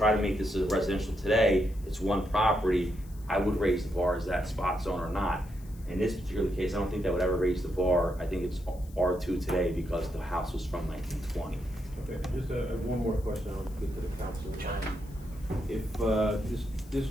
to make this a residential today, it's one property, I would raise the bar as that spot zone or not. In this particular case, I don't think that would ever raise the bar. I think it's R2 today because the house was from 1920. Okay, just one more question I'll get to the council. If this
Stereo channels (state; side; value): noise; left; hiss, 25 dB below the sound